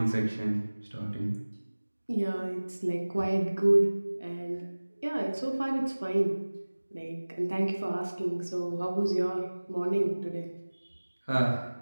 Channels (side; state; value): both; inverted; correlation -1.00